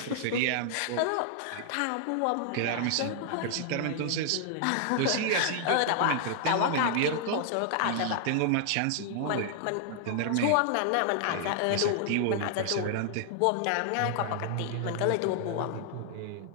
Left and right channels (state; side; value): different; both; correlation 0.00